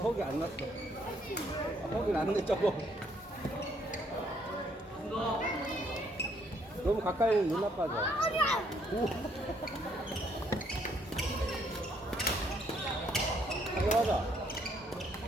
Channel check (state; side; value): normal; both; correlation 0.68